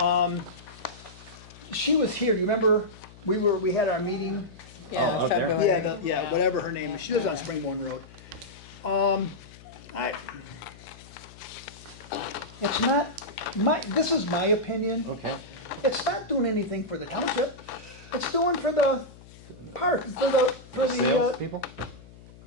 She was here, you remember, we had our meeting? Yeah, out there? February. Yeah, whatever her name is, she lives on Springborn Road. It's not, this is my opinion, Okay. it's not doing anything for the township, it's doing for the park, Sales people?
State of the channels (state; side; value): noise; left; hum, 20 dB below the sound